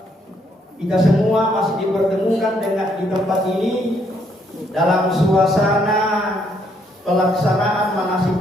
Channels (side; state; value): both; normal; correlation 0.71